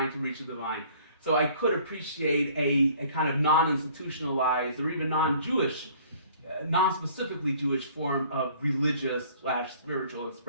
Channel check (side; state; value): both; inverted; correlation -0.55